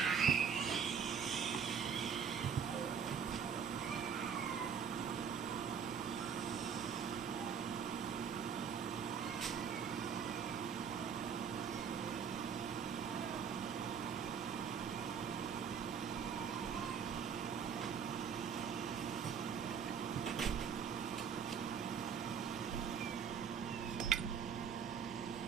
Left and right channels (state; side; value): quieter; left; 6.9 dB